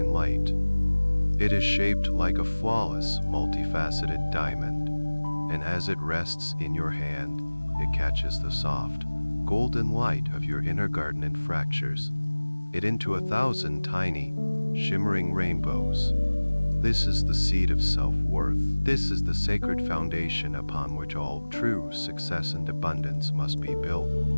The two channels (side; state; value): both; inverted; correlation -1.00